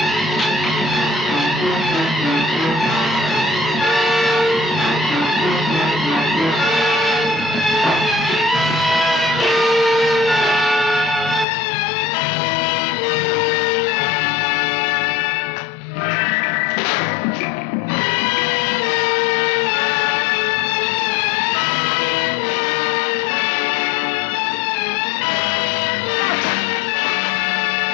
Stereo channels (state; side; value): drops out; right; at 11.5 s